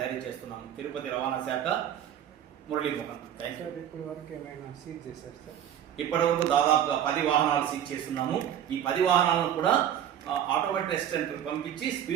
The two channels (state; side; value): quieter; left; 10.2 dB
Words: జారీ చేస్తున్నాము. తిరుపతి రవాణా శాఖ మురళీమోహన్. ఇప్పటి వరకు దాదాపుగా 10 వాహనాలు సీజ్ చేస్తున్నాము. ఈ 10 వాహనాలను కూడా ఆటోమేటిక్ టెస్ట్ సెంటర్ పంపించి